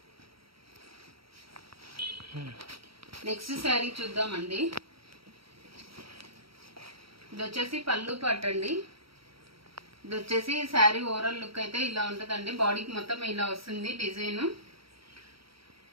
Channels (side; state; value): left; late; 0.75 ms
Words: నెక్స్ట్ శారీ చూద్దామండి. ఇది వచ్చేసి పళ్ళు పార్ట్ అండి. ఇది వచ్చేసి శారీ ఓవరాల్ లుక్ అయితే ఇలా ఉంటుందండి. బాడీకి మొత్తం ఇలా వస్తుంది డిజైన్.